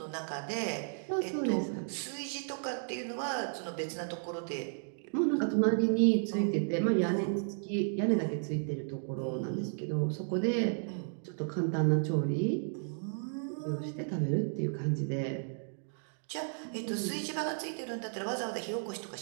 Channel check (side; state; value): left; silent; digital silence